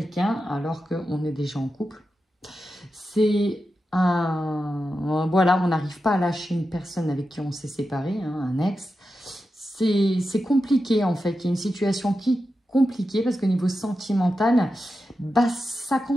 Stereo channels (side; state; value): both; normal; correlation 0.90